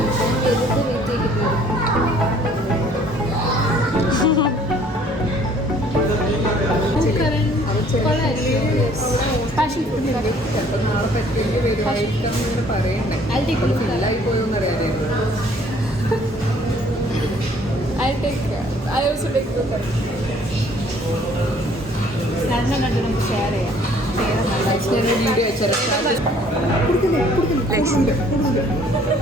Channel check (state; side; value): normal; both; correlation 0.58